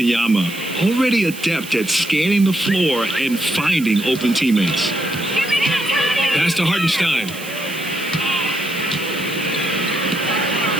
Already adept at scanning the floor and finding open teammates. Pass to Hartenstein.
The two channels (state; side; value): noise; right; hiss, 14 dB below the sound